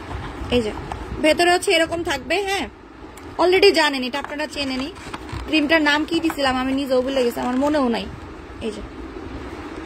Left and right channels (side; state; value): both; identical; correlation 1.00